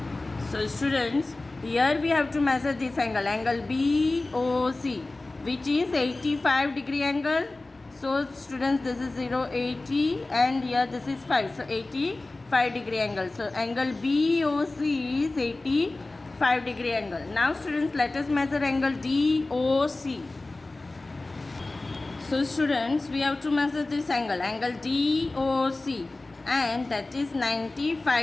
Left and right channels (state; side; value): quieter; right; 3.1 dB